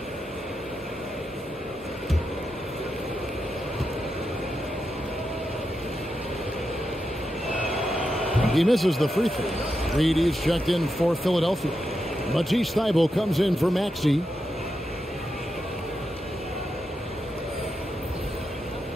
He misses the free throw. Reed is checked in for Philadelphia. Matisse Thybulle comes in for Maxey.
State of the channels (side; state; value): both; normal; correlation 0.87